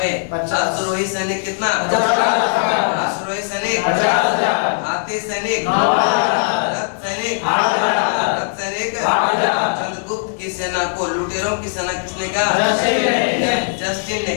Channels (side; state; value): right; silent; digital silence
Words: अश्वरोही सैनिक कितना? अश्वरोही सैनिक 50,000। हाथी सैनिक 9,000। रथ सैनिक 8,000। चंद्रगुप्त की सेना को लुटेरों की सेना किसने कहा? जस्टिन ने।